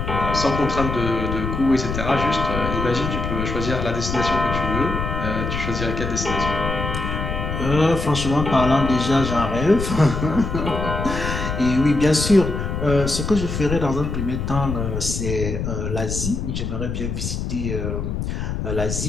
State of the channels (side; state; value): left; noise; rumble, 3 dB below the sound